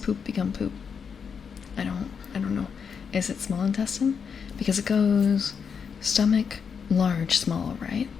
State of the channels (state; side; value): quieter; right; 6.4 dB